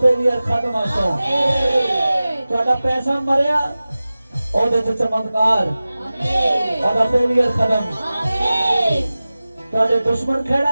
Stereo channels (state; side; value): inverted; both; correlation -0.97